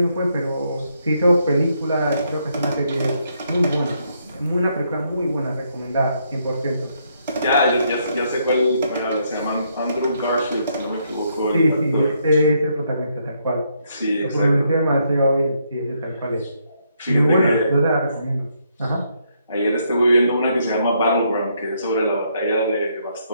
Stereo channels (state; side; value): inverted; both; correlation -0.74